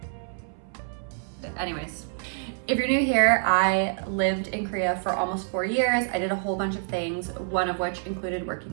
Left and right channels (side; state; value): left; silent; 60 dB below the other